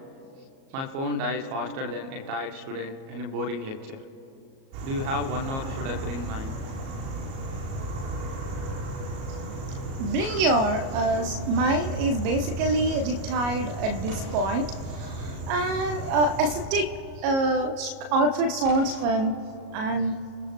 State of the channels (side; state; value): left; late; 37 ms